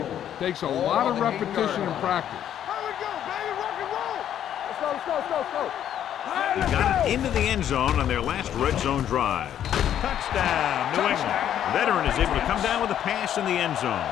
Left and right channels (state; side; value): quieter; right; 10.3 dB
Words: takes a lot of repetition and practice. Here we go, baby. Rock and roll. He got it into the end zone on their last red zone drive. Touchdown, New England. The veteran is able to come down with a pass in the end zone.